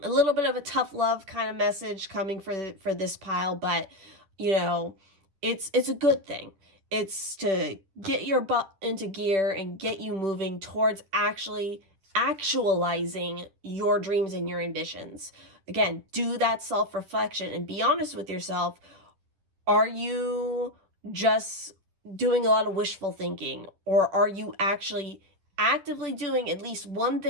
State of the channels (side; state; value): left; late; 10 ms